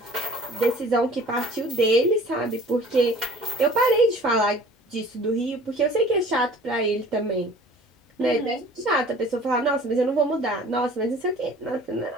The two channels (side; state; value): both; normal; correlation 0.48